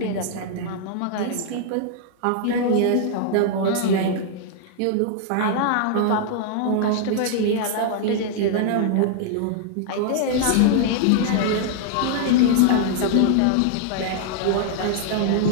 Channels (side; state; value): both; different; correlation -0.01